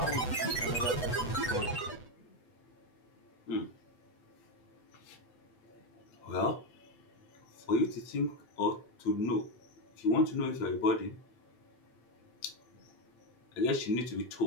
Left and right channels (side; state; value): right; late; 8.1 ms